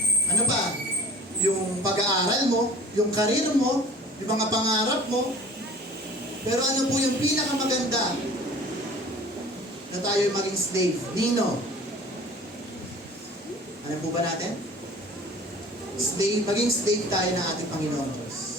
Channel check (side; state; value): both; normal; correlation 0.46